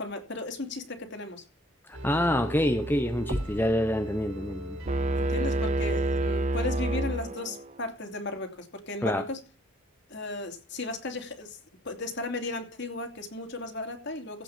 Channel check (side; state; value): both; normal; correlation 0.63